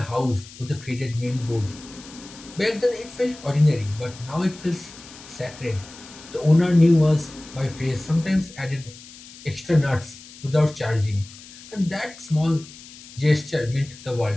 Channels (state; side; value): noise; left; hiss, 18 dB below the sound